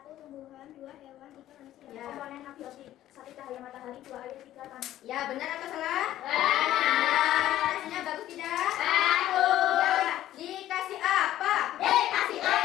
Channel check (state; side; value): quieter; right; 13.3 dB